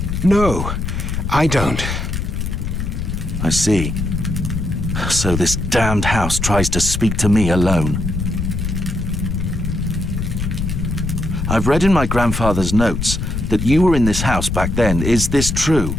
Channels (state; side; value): noise; left; rumble, 3 dB below the sound